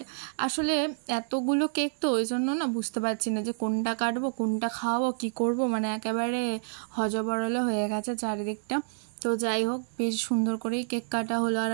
আসলে এতগুলো কেক তো ওই জন্য না বুঝতে পারছি না যে কোনটা কাটবো, কোনটা খাওয়াবো, কি করব, মানে একেবারে হজবরলে হয়ে গেছে চারিদিকটা। তো যাই হোক, বেশ সুন্দর করেই কেক কাটা হলো। আর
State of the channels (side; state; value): left; silent; digital silence